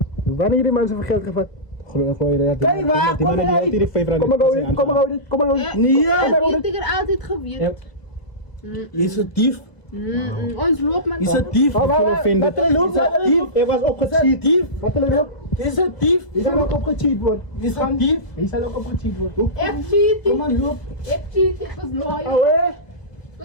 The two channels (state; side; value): late; right; 1.7 ms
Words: Wanneer die mensen van geld gevat? Gooi je Kijk waar, die kom man die maar altyd die 5 rand. Kom maar gauw dit. Ja, Nee, ja. Heeft ik er altijd gewierd. Je is een dief. Ons loopt man. Je is een dief. Ek voel offended. Wat loopt dat dief? Ek was opgecheat. Dief. Wat wil je nou? Je is een dief. Die zal ook opgecheat worden. Je is een dief. Die zal ook opgecheat worden. Ik cheat. Kom maar, loop. Ik cheat. Ik was loyal. Oh hè? Ik